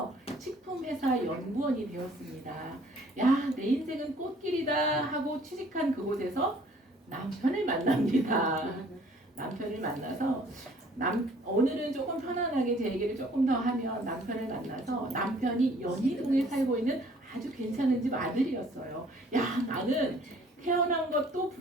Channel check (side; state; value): both; normal; correlation 0.57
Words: 식품회사 연구원이 되었습니다. 야, 내 인생은 꽃길이다 하고 취직한 그곳에서 남편을 만납니다. 남편을 만나서 오늘은 조금 편안하게 제 얘기를 조금 더 하면 남편을 만나서 남편이 연희동에 살고 있는 아주 괜찮은 집 아들이었어요. 야, 나는 태어난 것도